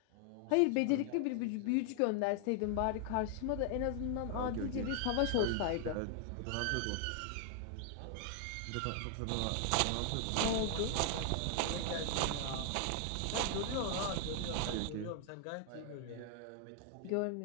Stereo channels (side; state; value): both; different; correlation 0.00